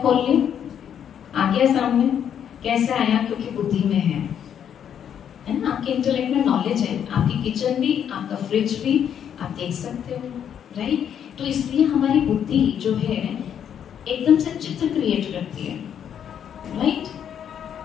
खोल लिया, आ गया सामने, कैसे आया? क्योंकि बुद्धि में है ना? आपके इंटेलेक्ट में नॉलेज है, आपकी किचन भी, आपका फ्रिज भी आप देख सकते हो, राइट? तो इसलिए हमारी बुद्धि जो है एकदम से चित्र क्रिएट करती है, राइट?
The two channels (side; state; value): right; quieter; 8.9 dB